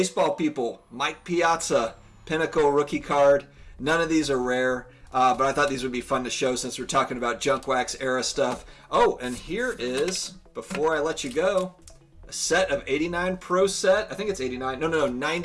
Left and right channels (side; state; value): both; identical; correlation 1.00